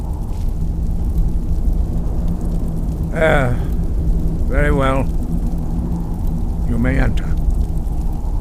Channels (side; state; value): both; identical; correlation 1.00